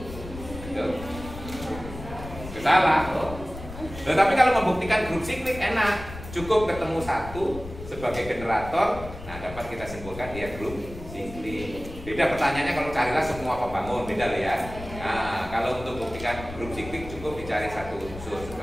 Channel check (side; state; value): left; noise; rumble, 12 dB below the sound